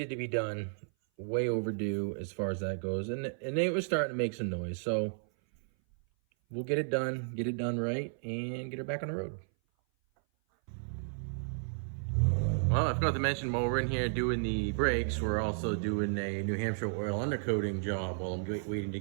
to be done. Way overdue as far as that goes. And it was starting to make some noise. So we'll get it done right, and get her back on the road. Well, I forgot to mention, while we're in here doing the brakes, we're also doing a New Hampshire oil undercoating job while I'm waiting to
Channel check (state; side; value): silent; left; 56 dB below the other